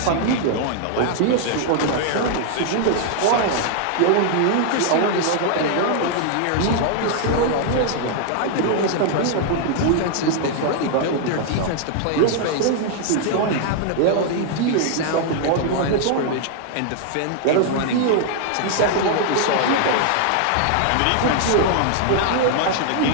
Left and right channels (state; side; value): different; both; correlation 0.00